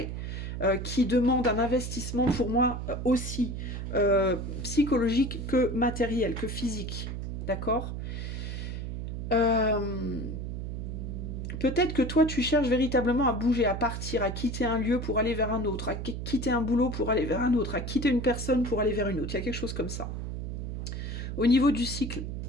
qui demande un investissement pour moi aussi psychologique que matériel, que physique. D'accord? Peut-être que toi, tu cherches véritablement à bouger, à partir, à quitter un lieu pour aller vers un autre, à quitter un boulot pour aller vers un autre, à quitter une personne pour aller vers une autre. Il y a quelque chose comme ça. Au niveau du cycle,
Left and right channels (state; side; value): noise; right; hum, 5 dB below the sound